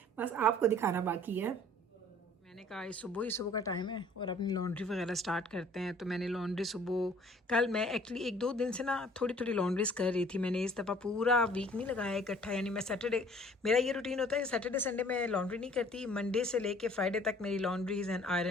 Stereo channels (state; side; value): normal; both; correlation 0.54